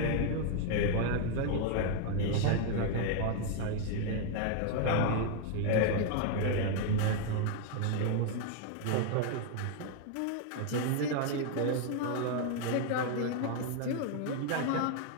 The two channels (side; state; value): both; different; correlation 0.00